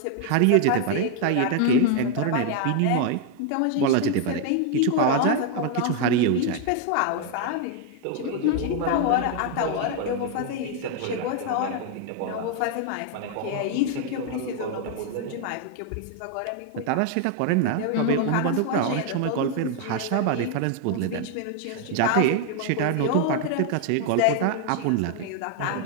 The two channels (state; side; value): different; both; correlation 0.00